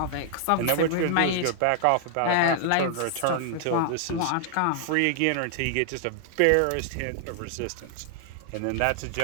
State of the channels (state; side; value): different; both; correlation 0.00